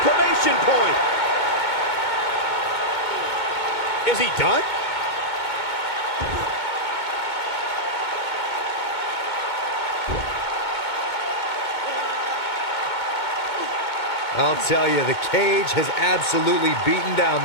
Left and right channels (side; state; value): right; late; 2.2 ms